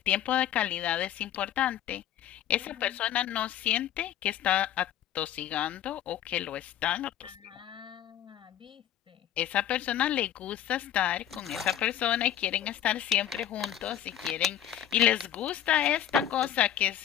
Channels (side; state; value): right; quieter; 11.1 dB